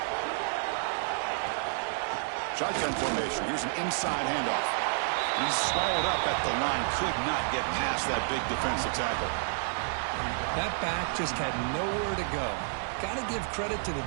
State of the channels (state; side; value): silent; left; digital silence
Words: Shotgun formation. Here's an inside handoff. He's swallowed up at the line. Could not get past that big defensive tackle. That back just had nowhere to go. Got to give credit to the